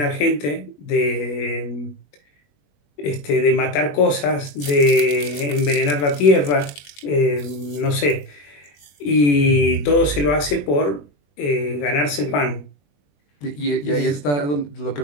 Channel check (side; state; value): right; late; 21 ms